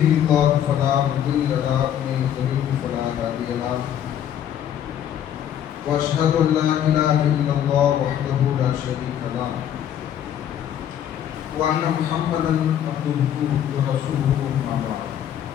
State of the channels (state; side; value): quieter; right; 10.2 dB